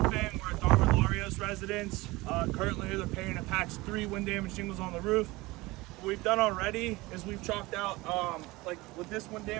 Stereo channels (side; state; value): left; quieter; 21.3 dB